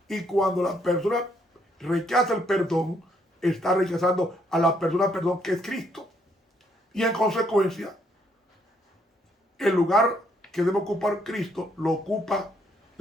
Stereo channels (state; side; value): normal; both; correlation 0.71